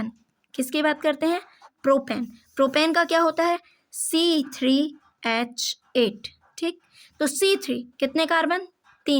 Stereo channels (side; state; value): both; identical; correlation 1.00